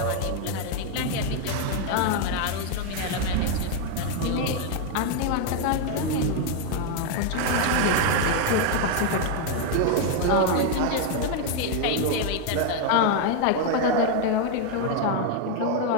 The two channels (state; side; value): different; both; correlation 0.01